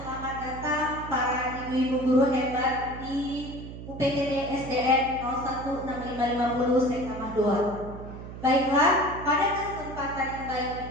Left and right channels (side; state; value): right; noise; hum, 11 dB below the sound